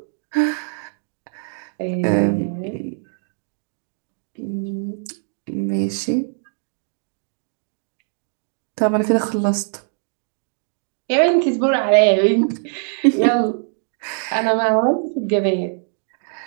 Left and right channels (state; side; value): silent; left; 60 dB below the other